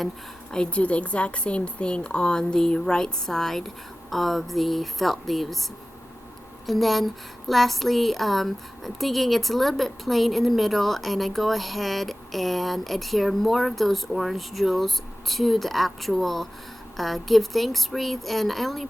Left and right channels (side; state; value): both; normal; correlation 0.96